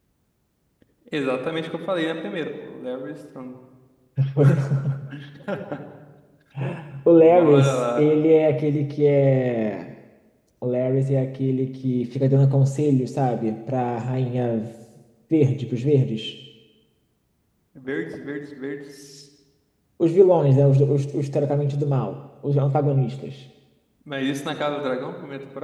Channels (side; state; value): both; identical; correlation 1.00